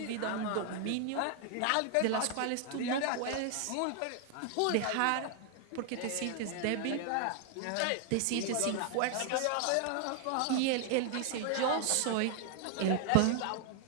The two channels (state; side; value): different; both; correlation 0.00